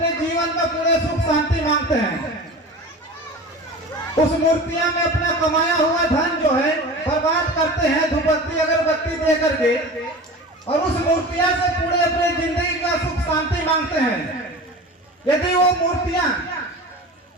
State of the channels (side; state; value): both; normal; correlation 0.34